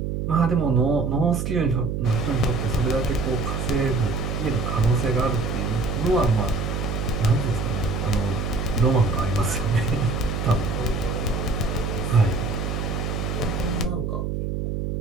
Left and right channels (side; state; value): right; noise; hum, 2 dB below the sound